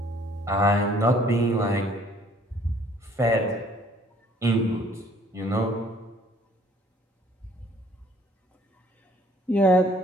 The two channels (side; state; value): both; normal; correlation 0.59